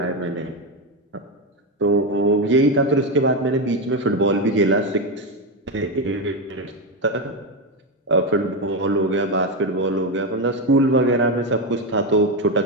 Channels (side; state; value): both; normal; correlation 0.11